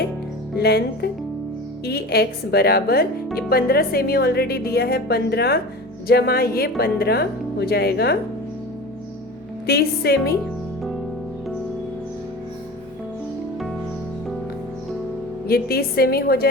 लेंथ EX बराबर, ये 15 सेमी ऑलरेडी दिया है, 15 जमा ये 15 हो जाएगा 30 सेमी। ये 30 सेमी हो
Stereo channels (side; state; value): both; normal; correlation 0.34